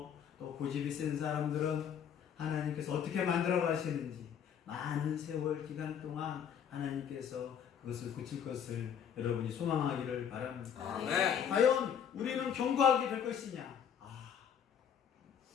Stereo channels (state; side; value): quieter; right; 8.3 dB